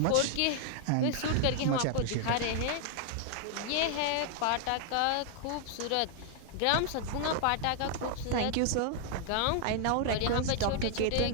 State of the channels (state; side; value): different; both; correlation 0.00